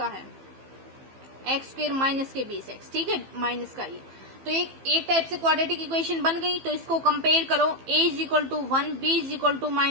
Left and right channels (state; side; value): late; left; 15 ms